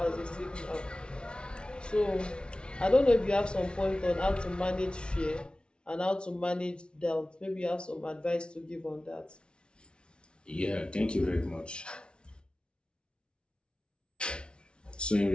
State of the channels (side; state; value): right; late; 0.057 ms